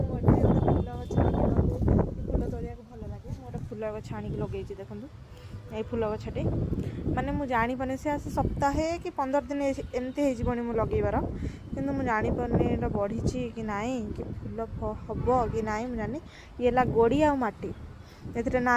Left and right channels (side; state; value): both; identical; correlation 1.00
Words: गोटे फूल गछ फूल तोड़ा भल लगे गोटे फूल गछ आनिक लगे देखूँ ये फूल गछटे माने मुझे जापारे से आसे सप्ताहे कि 15 दिन एमती होनी मु लगेबार किंतु मुझे जापारे एटा बढ़ी कि नाई कि फूल हम कि नाई मुझे जानी ये गोड़ी आ माटी ए ना